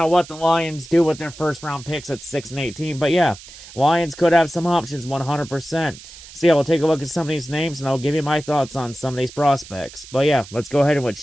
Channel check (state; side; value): noise; right; hiss, 17 dB below the sound